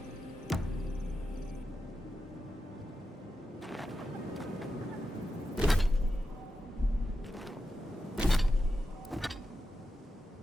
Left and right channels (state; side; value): normal; both; correlation 0.89